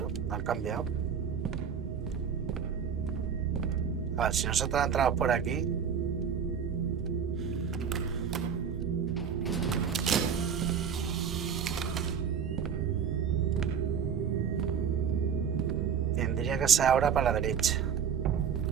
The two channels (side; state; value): left; quieter; 7.3 dB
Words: lo han cambiado. A ver, si nosotros entramos por aquí. Tendría que ser ahora para la derecha.